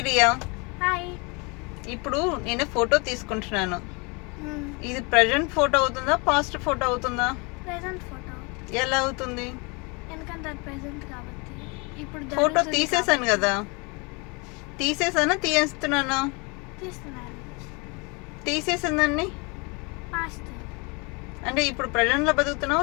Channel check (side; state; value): right; quieter; 30.0 dB